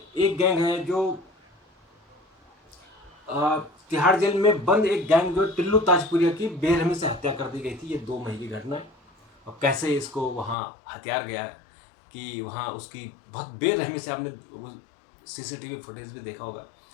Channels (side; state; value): right; drops out; at 10.6 s